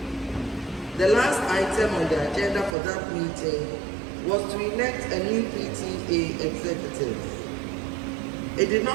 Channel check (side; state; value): left; drops out; at 2.8 s